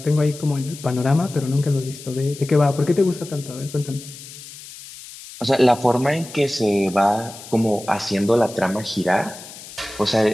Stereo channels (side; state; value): left; noise; hiss, 16 dB below the sound